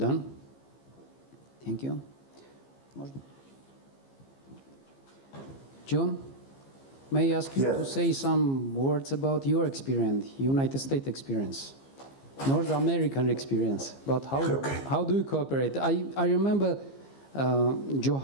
Thank you. John, may I ask you to say some words about your experience, United States experience, North American experience, about how do you cooperate? I remember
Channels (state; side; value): late; right; 15 ms